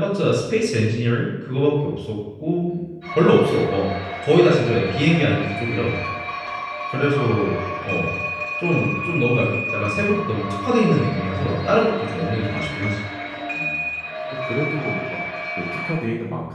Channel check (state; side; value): identical; both; correlation 1.00